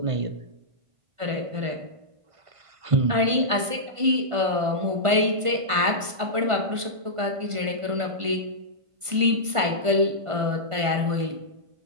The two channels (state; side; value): late; left; 1.5 ms